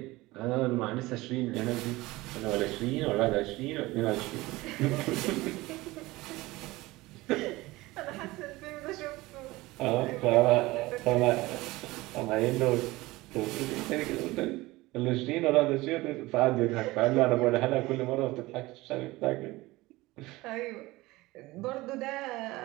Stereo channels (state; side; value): quieter; left; 20.0 dB